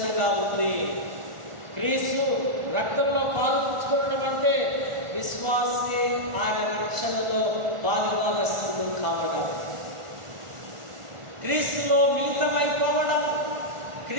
ఉంది. క్రీస్తు రక్తంలో పాలు పుచ్చుకోవడం అంటే విశ్వాసి ఆయన రక్షణలో పాలుభాగస్తులు కావడం, క్రీస్తులో మిళితమైపోవడం,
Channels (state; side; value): late; left; 1.4 ms